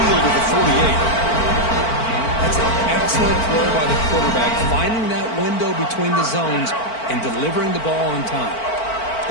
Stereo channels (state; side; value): late; right; 4.5 ms